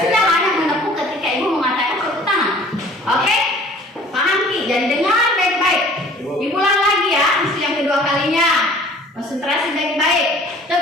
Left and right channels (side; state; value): both; normal; correlation 0.50